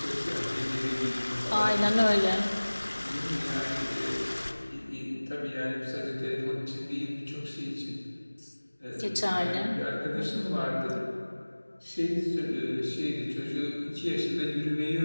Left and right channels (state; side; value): inverted; both; correlation -1.00